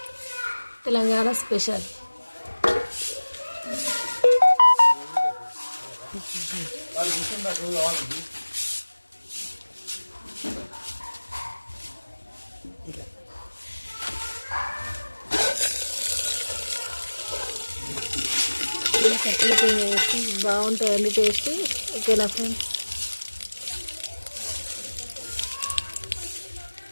తెలంగాణ స్పెషల్. ఇలా కట్టెల పొయ్యి వేసి బాగుంటుందండి టేస్ట్. ఓకేనా ఫ్రెండ్స్,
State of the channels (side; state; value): both; inverted; correlation -1.00